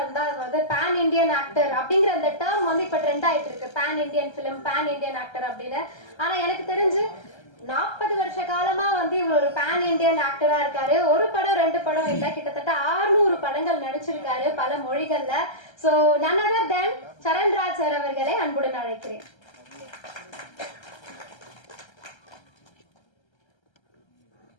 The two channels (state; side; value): late; right; 1.3 ms